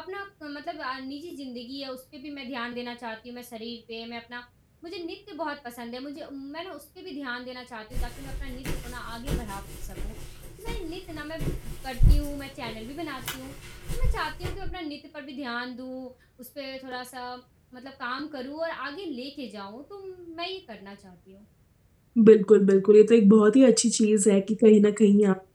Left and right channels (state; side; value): identical; both; correlation 1.00